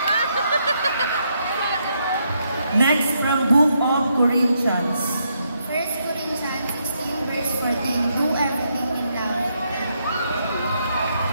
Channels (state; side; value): inverted; both; correlation -0.78